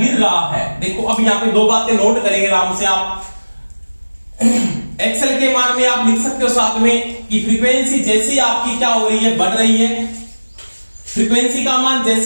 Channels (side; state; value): both; inverted; correlation -1.00